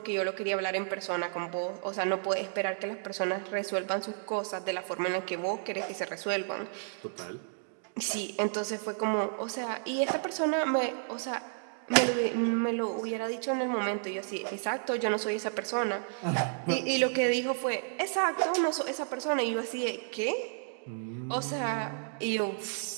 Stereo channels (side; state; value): left; silent; digital silence